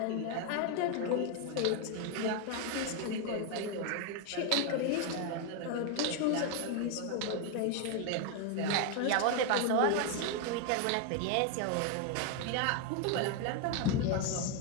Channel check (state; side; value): different; both; correlation 0.01